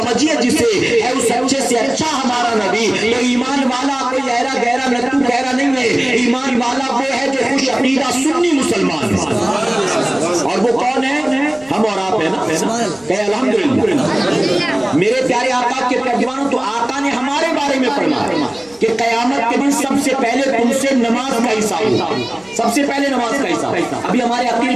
جسے ہے، اس اچھے سے اچھا ہمارا نبی. تو ایمان والا کوئی ایرا گہرا نتو گہرا نہیں ہے، ایمان والا وہ ہے جو خوش عقیدہ سنی مسلمان ہے. اور وہ کون ہے؟ ہم اور آپ ہیں نا، کہ الحمدللہ. میرے پیارے آقا کے پیغمبروں، تو آقا نے ہمارے بارے میں فرمایا کہ قیامت کے دن سب سے پہلے تم سے نماز کا حساب ہوگا، سب سے پہلے نماز کا حساب. ابھی ہمارے عقیل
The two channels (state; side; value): noise; right; rumble, 29 dB below the sound